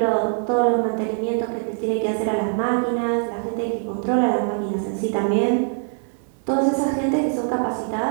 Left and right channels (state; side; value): silent; left; 64 dB below the other